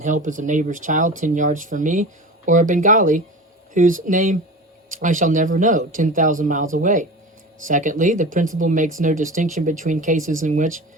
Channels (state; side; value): normal; both; correlation 0.33